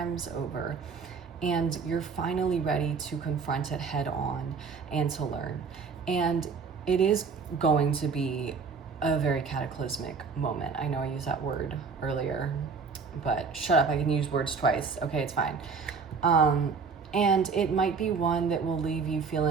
over, and you're finally ready to confront it head on and to learn. And it is going to be a very cataclysmic moment. I know I used that word earlier, but shut up, I can use words twice. Okay, it's fine. And it might be one that will leave you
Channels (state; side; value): quieter; left; 5.3 dB